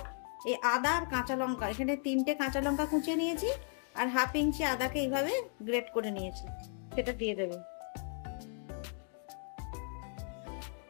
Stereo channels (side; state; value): right; silent; 54 dB below the other